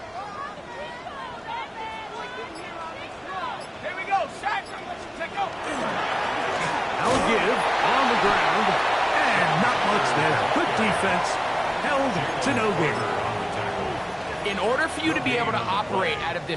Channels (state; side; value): identical; both; correlation 1.00